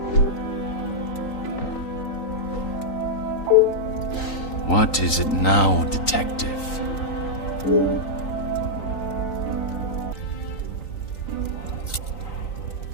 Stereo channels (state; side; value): late; right; 3.9 ms